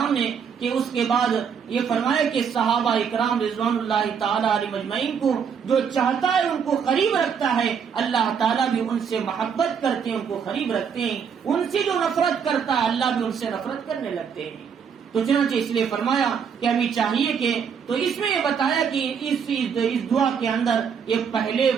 نے کہ اس کے بعد یہ فرمایا کہ صحابہ اکرام رضوان اللہ تعالی علیہم اجمعین کو جو چاہتا ہے ان کو قریب رکھتا ہے، اللہ تعالیٰ بھی ان سے محبت کرتے ہیں، ان کو قریب رکھتے ہیں، ان سے جو نفرت کرتا ہے اللہ بھی ان سے نفرت کرنے لگتے ہیں۔ تو چنانچہ اس لیے فرمایا کہ ہمیں چاہیے کہ تو اس میں یہ بتایا کہ اس دعا کے اندر یہ پہلے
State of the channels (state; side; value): quieter; left; 7.0 dB